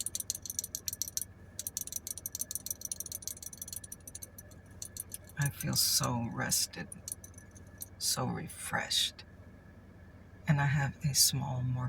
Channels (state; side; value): identical; both; correlation 1.00